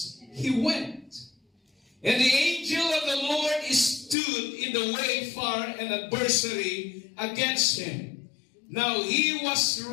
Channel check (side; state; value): right; drops out; at 4.2 s